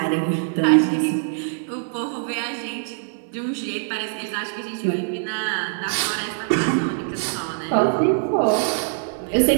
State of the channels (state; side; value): silent; left; digital silence